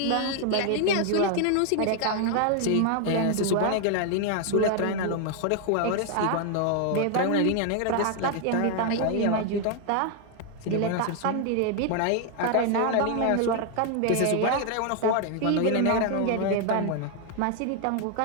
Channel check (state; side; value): different; both; correlation 0.00